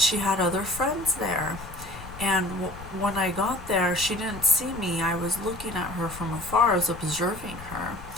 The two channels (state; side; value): noise; left; rumble, 14 dB below the sound